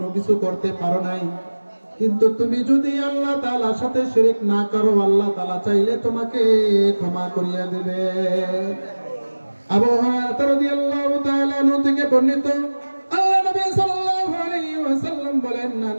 কিছু করতে পারো নাই, কিন্তু তুমি যদি আল্লাহ তাআলার সাথে শিরক না করো, আল্লাহ তাআলা চাইলে তোমাকে ক্ষমা করিয়া দেবে। আবু হুরায়রা রাদিয়াল্লাহু তাআলা আনহু থেকে বর্ণিত, আল্লাহ নবী সাল্লাল্লাহু আলাইহি ওয়াসাল্লাম বলেন, মান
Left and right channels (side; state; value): both; inverted; correlation -1.00